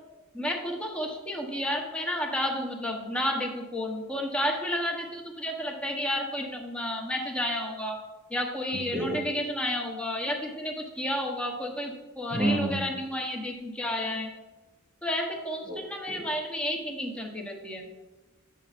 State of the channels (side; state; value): both; normal; correlation 0.56